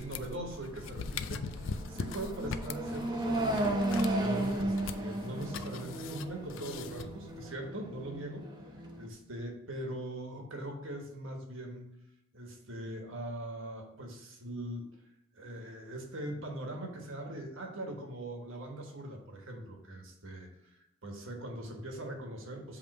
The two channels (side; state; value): both; normal; correlation 0.54